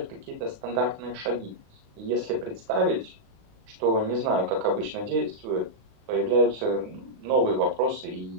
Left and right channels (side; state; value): left; late; 36 ms